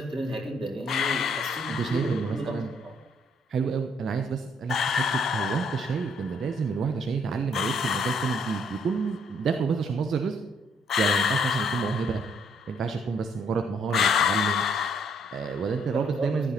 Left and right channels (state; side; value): normal; both; correlation 0.67